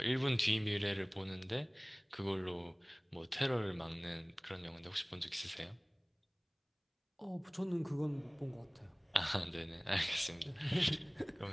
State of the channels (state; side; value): identical; both; correlation 1.00